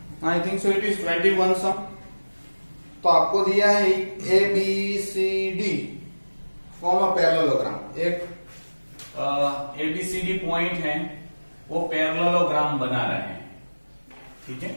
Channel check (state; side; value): inverted; both; correlation -1.00